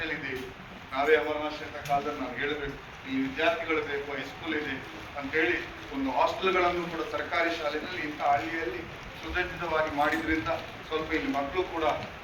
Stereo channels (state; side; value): identical; both; correlation 1.00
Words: ಇದೆ. ನಾವೇ ಅಮರನಾಥ ಕಾಲದಲ್ಲಿ ನಾವು ಹೇಳಬೇಕು, ಈ ವಿದ್ಯಾರ್ಥಿಗಳು ಬೇಕು, ಹೈಸ್ಕೂಲ್ ಇದೆ ಅಂತೇಳಿ ಒಂದು ಹಾಸ್ಟೆಲ್ಗಳನ್ನು ಕೂಡ ಸರ್ಕಾರಿ ಶಾಲೆಯಲ್ಲಿ ಇಂಥ ಹಳ್ಳಿಯಲ್ಲಿ ಸುಸಜ್ಜಿತವಾಗಿ ಮಾಡಿದ್ರಿಂದ ಸ್ವಲ್ಪ ಇಲ್ಲಿ ಮಕ್ಕಳು ಕೂಡ